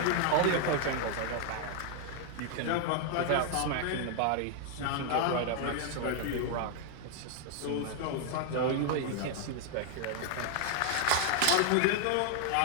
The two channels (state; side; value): different; both; correlation 0.00